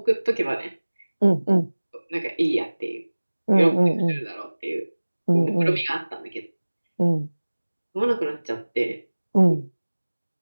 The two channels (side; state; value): both; inverted; correlation -1.00